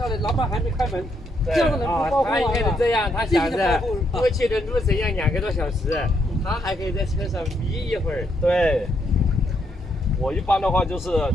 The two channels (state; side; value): normal; both; correlation 0.76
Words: 来？老板还没开门，这样的人不包他应该是这样，他想着过去的路程要2个多小时，他还可以在车上眯一会儿。对，我一般的话就是